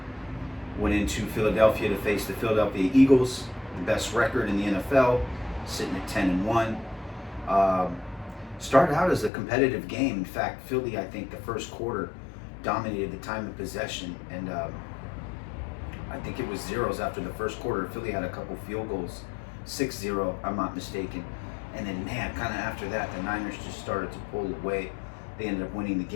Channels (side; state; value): right; drops out; at 9.3 s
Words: went into Philadelphia to face the Philadelphia Eagles, the best record in the NFL, sitting at 10-1. Started out as a competitive game. In fact, Philly, I think, the first quarter dominated the time of possession, and I think it was zeros after the first quarter. Philly had a couple field goals, 6-0, I'm not mistaken. And then, man, kind of after that, the Niners just started to pull away. They ended up winning the